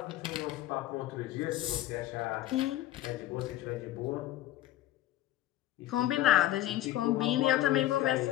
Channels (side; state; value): right; quieter; 14.1 dB